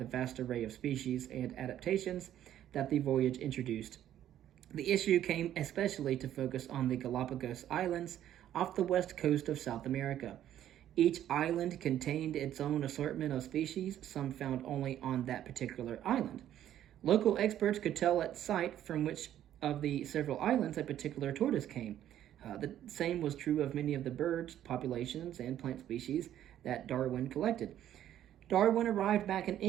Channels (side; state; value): left; quieter; 11.5 dB